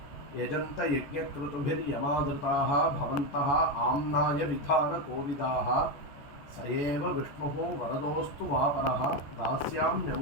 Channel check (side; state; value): right; late; 14 ms